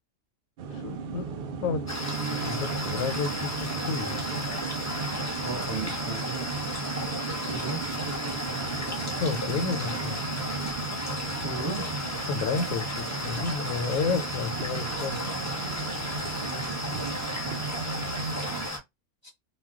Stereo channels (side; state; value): both; normal; correlation 0.01